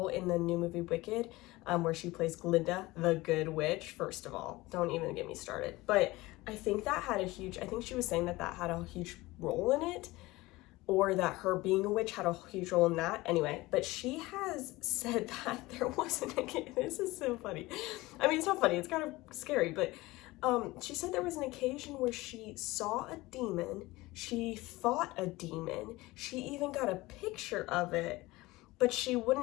in the new movie Wicked, where she plays Glinda, the good witch, first of all, don't even get me started. But I think that had a huge, I think she was saying that that had a huge role in it, or that her being a witch had a huge role in that. Anyway, but she has said that there wasn't a, this is so funny. I mean, it's not funny, it's kind of scary, but she said there was an occasion where she saw a demon, she fought a demon, she even got a picture of it, but she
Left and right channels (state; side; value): quieter; right; 20.1 dB